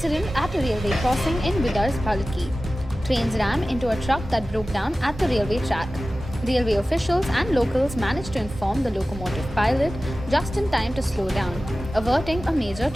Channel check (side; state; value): both; normal; correlation 0.96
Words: accident at a railway crossing in Bidar's Palki. Trains rammed into a truck that broke down at the railway track. Railway officials and locals managed to inform the locomotive pilot just in time to slow down, averting a major